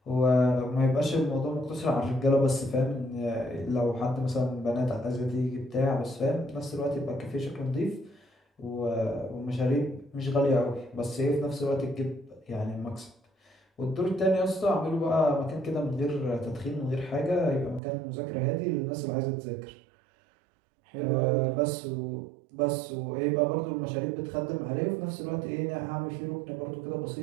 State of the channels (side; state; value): left; drops out; at 17.8 s